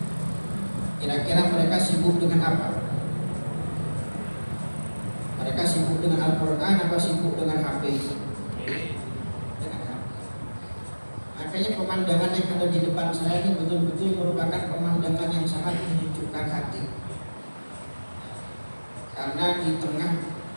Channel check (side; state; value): both; inverted; correlation -1.00